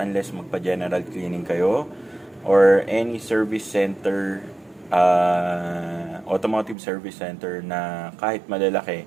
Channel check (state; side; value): drops out; left; at 6.8 s